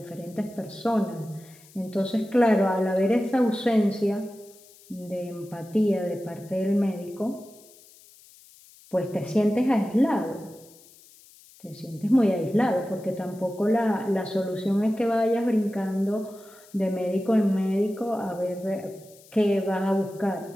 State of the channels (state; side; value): noise; left; hiss, 25 dB below the sound